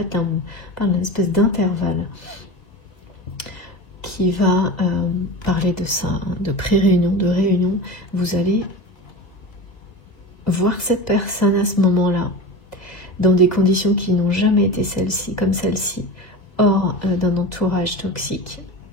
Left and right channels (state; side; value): late; right; 2.0 ms